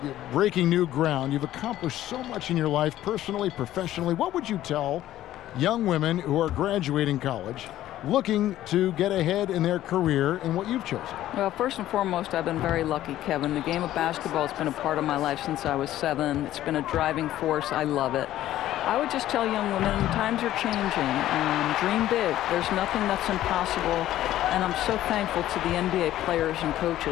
breaking new ground. You've accomplished so much in your life, personally, professionally. What would you tell young women who are graduating college, looking to get ahead in their career in what you've chosen? Well, first and foremost, I've been very lucky, Kevin. The game of basketball has been a part of my life since I was 7. It's been a driving force. I love it. I would just tell young women, times are changing. Dream big. There's nothing that's impossible. And I'm so thankful to the NBA players and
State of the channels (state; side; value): quieter; right; 13.6 dB